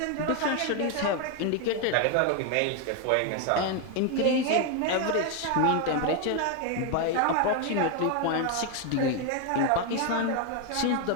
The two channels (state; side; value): different; both; correlation 0.01